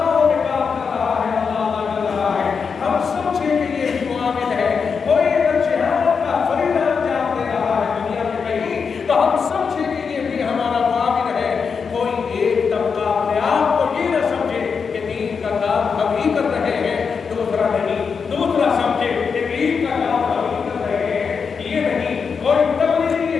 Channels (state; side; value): quieter; right; 5.8 dB